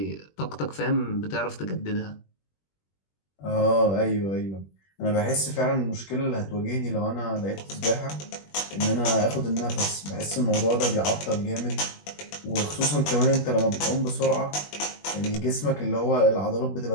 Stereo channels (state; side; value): late; right; 21 ms